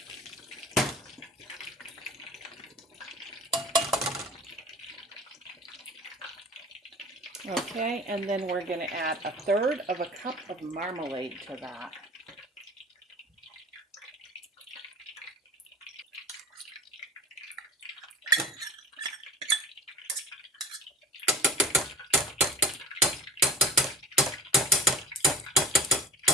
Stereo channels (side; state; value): both; normal; correlation 0.37